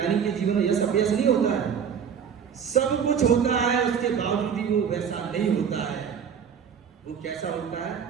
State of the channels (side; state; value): left; quieter; 7.4 dB